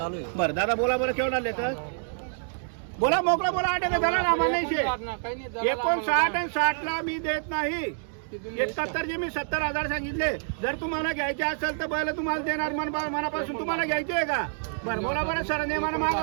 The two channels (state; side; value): silent; left; digital silence